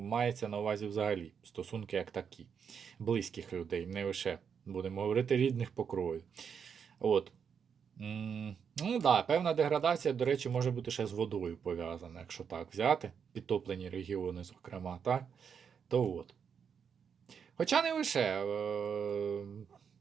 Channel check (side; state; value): left; quieter; 7.0 dB